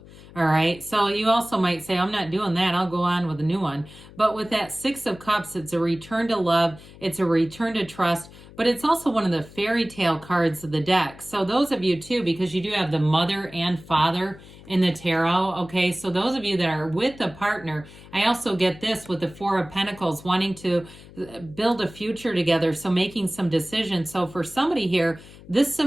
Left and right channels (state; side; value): noise; left; hum, 20 dB below the sound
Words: All right. So you also might say, I'm not doing that. I'll go on with a new one. But with that Six of Cups, it's a return to love. It's a return to trust. But it's also one of the fairy tale cards of the deck. So those of you too, because you do have the mother and father in the tarot. Okay, so those of you that are with a partner, I also get this with the Four of Pentacles, wanting to build a future together, so making some decisions. So for somebody here, This